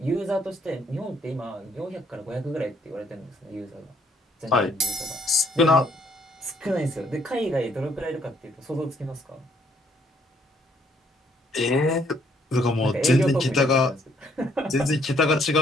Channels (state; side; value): normal; both; correlation 0.67